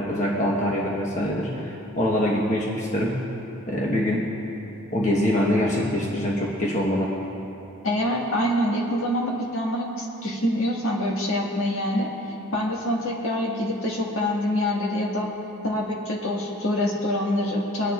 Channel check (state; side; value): normal; both; correlation 0.53